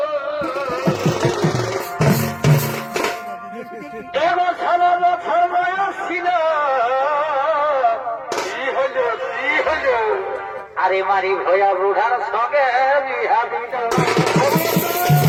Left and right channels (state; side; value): identical; both; correlation 1.00